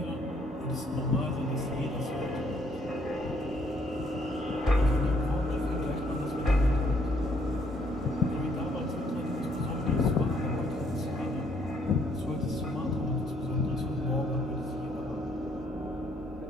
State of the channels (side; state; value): both; normal; correlation 0.67